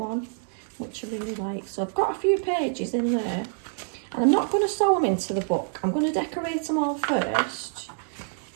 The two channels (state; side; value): silent; left; digital silence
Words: which I really like. So I've got a few pages in there. And I'm not going to sew them into the book. I'm going to decorate them all first.